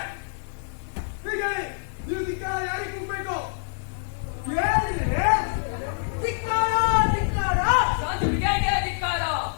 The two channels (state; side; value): silent; right; digital silence